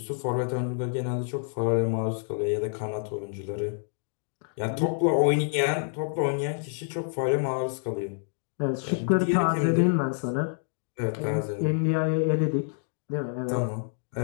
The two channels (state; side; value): silent; right; digital silence